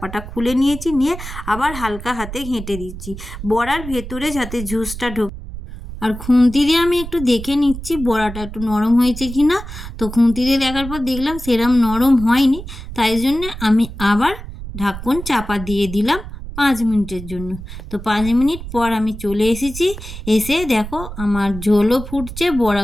খুলে নিয়েছি, নিয়ে আবার হালকা হাতে ঘেঁটে দিচ্ছি বড়ার ভেতরে যাতে জুসটা ঢোকে। আর খুন্তি দিয়ে আমি একটু দেখে নিচ্ছি বড়াটা একটু নরম হয়েছে কি না। তো খুন্তি দিয়ে দেখার পর দেখলাম সেরম নরম হয়নি, তাই জন্যে আমি আবার ঢাকন চাপা দিয়ে দিলাম 5 মিনিটের জন্য। তো 5 মিনিট পর আমি চলে এসেছি, এসে দেখো আমার ঝোলও ফুটছে,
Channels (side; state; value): right; noise; rumble, 10 dB below the sound